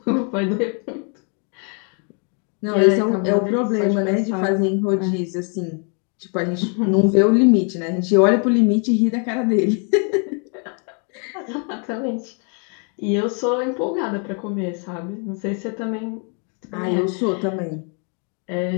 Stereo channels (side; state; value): right; quieter; 39.6 dB